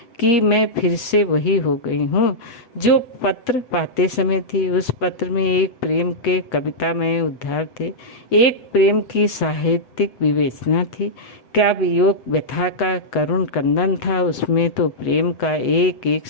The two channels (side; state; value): right; late; 7.8 ms